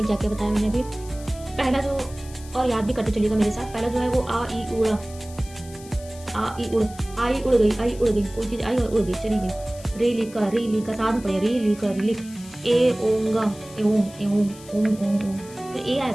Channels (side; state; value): left; noise; hiss, 19 dB below the sound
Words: क्या क्या बताया मैंने अभी। पहला जो, और याद भी करते चलिएगा मेरे साथ, पहला जो है वो आ ई उड़ा, आ ई उड़, आई उड़ गई, कोई चीज़ आई और उड़ गई, चली गई। रे लिखा साथ में पढ़िए, री लिखा रिलिख, ए ओंगा एओंग एओंग ओंग ओंग ओंग, फिर ए आया